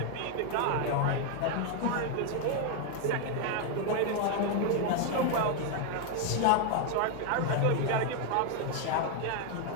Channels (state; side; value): different; both; correlation 0.01